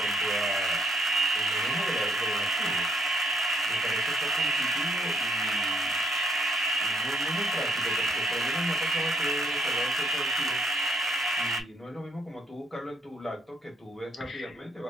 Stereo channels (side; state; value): both; normal; correlation 0.68